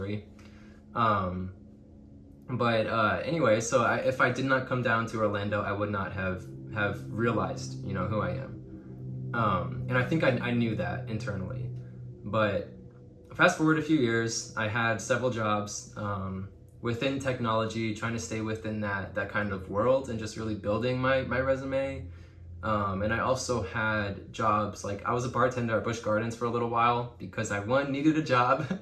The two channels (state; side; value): identical; both; correlation 1.00